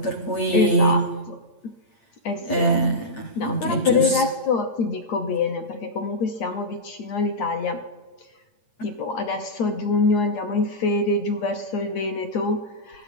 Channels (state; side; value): late; right; 8.6 ms